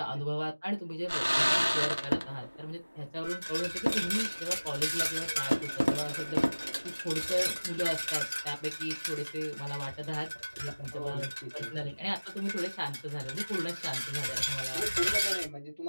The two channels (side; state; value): both; inverted; correlation -1.00